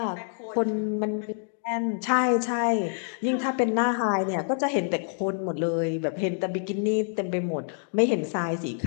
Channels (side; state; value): right; silent; digital silence